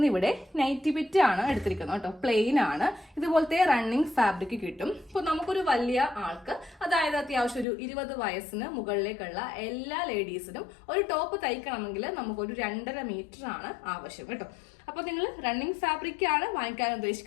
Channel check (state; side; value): drops out; right; at 7.7 s